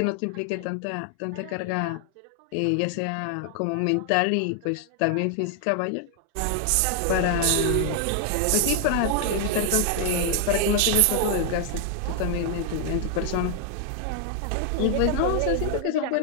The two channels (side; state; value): both; different; correlation 0.00